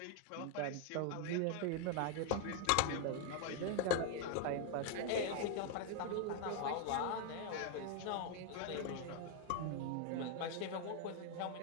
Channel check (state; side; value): different; both; correlation 0.01